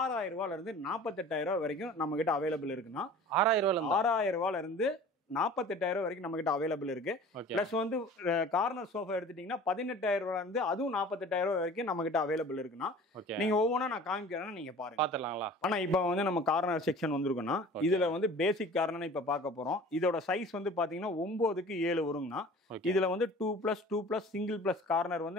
ரூபாயில இருந்து 48,000 ரூபாய் வரைக்கும் நம்ம கிட்ட அவைலபிள் இருக்குன்னா 6,000 ரூபாயில இருந்து 48,000 வரைக்கும் நம்ம கிட்ட அவைலபிள் இருக்கு. பிளஸ் வந்து கார்னர் சோஃபா எடுத்துட்டீங்கன்னா 18,000 ரூபாயில இருந்து அதுவும் 48,000 வரைக்கும் நம்ம கிட்ட அவைலபிள் இருக்குன்னா நீங்க ஒவ்வொன்றா நான் காமிக்கிறேன்னா நீங்க பாருங்க பாத்துடலாங்களா. ஆனா இப்போ வந்து நம்ம கார்னர் செக்ஷன் வந்துருக்குன்னா இதுல வந்து பேசிக் கார்னர் இப்ப பார்க்க போறோம். இதோட சைஸ் வந்து பாத்தீங்கன்னா 9க்கு 7 வருங்கண்ணா. இதுல வந்து 2+2+ சிங்கிள் பிளஸ் கார்னர்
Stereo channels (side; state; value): both; normal; correlation 0.44